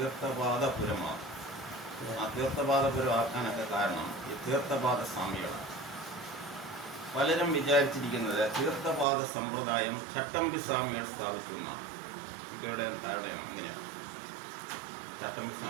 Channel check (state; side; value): drops out; left; at 9.1 s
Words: ആ തീർത്ഥപാദപുരം ആക്കാനൊക്കെ കാരണം ഈ തീർത്ഥപാദ സ്വാമികളാണ്. പലരും വിചാരിച്ചിരിക്കുന്നത് തീർത്ഥപാദ സമ്പ്രദായം ചട്ടമ്പി സ്വാമികൾ സ്ഥാപിക്കുന്നതാണ്. ഇവിടെ ധാരണയാണ് അങ്ങനെയാണ്. ചട്ടമ്പി